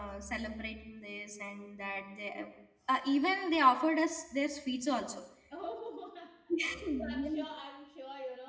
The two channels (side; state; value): both; identical; correlation 1.00